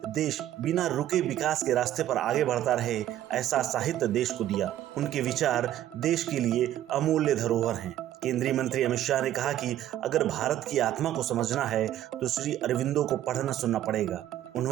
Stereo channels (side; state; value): left; quieter; 12.5 dB